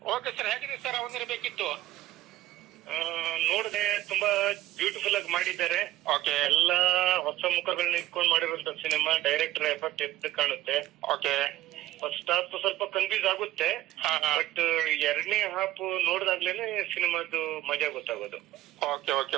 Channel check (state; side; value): quieter; left; 14.9 dB